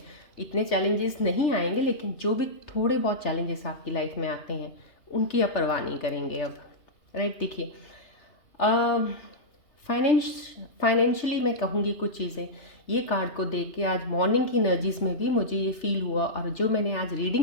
इतने चैलेंजेस नहीं आएंगे, लेकिन जो भी थोड़े बहुत चैलेंजेस आपकी लाइफ में आते हैं उनकी आप परवाह नहीं करेंगे अब। राइट, देखिए फाइनेंशियली मैं कहूँगी कुछ चीज़ें, ये कार्ड को देख के आज मॉर्निंग की एनर्जीज में भी मुझे ये फील हुआ, और जो मैंने आज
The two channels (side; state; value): right; late; 3.3 ms